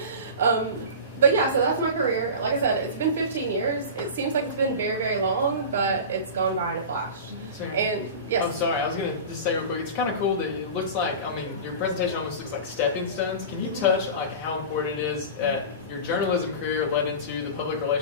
But yeah, so that's my career. Like I said, it's been 15 years. It seems like it's been very, very long, but it's gone by in a flash. And yes. Oh, sorry. I was going to just say real quick. It's kind of cool that it looks like, I mean, your presentation almost looks like stepping stones. Can you touch like how important it is that your journalism career led into the public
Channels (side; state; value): both; inverted; correlation -0.31